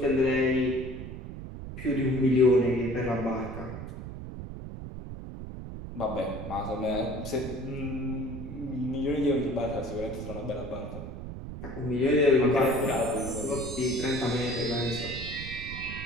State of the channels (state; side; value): noise; right; rumble, 9 dB below the sound